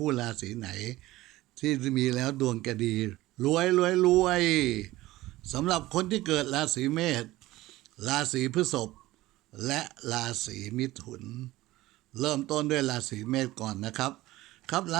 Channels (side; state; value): left; quieter; 17.5 dB